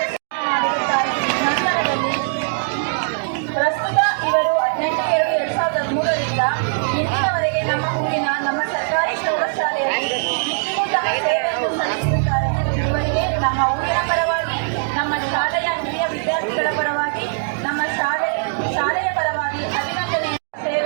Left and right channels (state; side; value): silent; left; digital silence